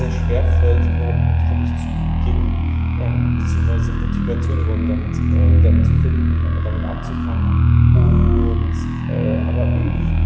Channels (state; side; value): identical; both; correlation 1.00